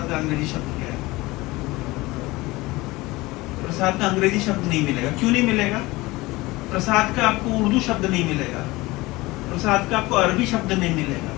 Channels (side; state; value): right; quieter; 20.9 dB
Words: का अंग्रेजी शब्द क्या है? प्रसाद का अंग्रेजी शब्द नहीं मिलेगा। क्यों नहीं मिलेगा? प्रसाद का आपको उर्दू शब्द नहीं मिलेगा, प्रसाद का आपको अरबी शब्द नहीं मिलेगा,